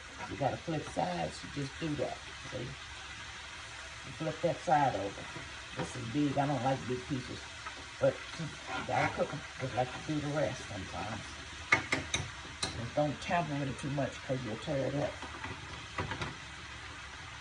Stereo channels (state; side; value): identical; both; correlation 1.00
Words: got to flip sides, you just do that. See? You flip that side over. This is big. I don't like big pieces. But you got to cook them just like you do the rest sometimes. Just don't tamper with it too much because you'll tear it up.